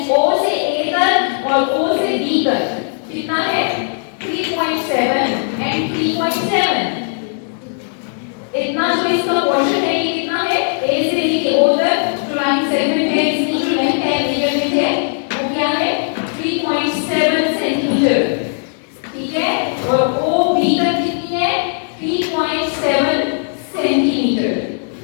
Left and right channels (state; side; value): silent; right; 58 dB below the other